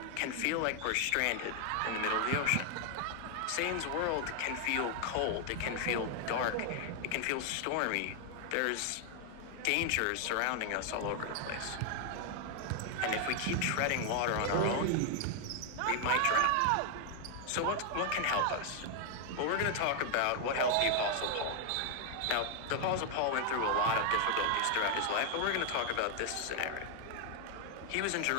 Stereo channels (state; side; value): different; both; correlation 0.00